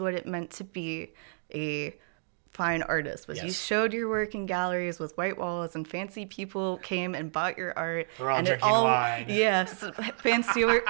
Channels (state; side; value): silent; left; digital silence